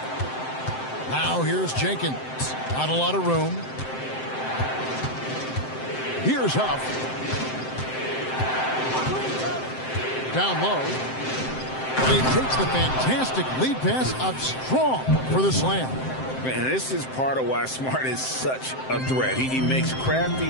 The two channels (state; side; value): late; right; 7.7 ms